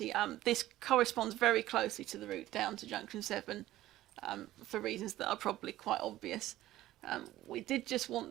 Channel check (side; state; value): left; quieter; 15.1 dB